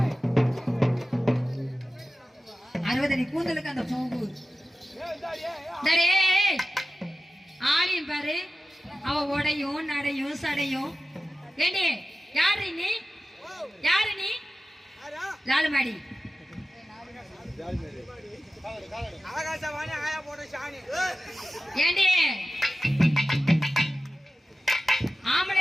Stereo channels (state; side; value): normal; both; correlation 0.94